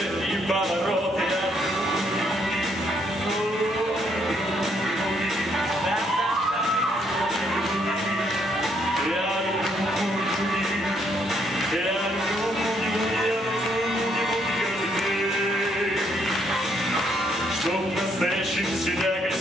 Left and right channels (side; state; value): both; normal; correlation 0.72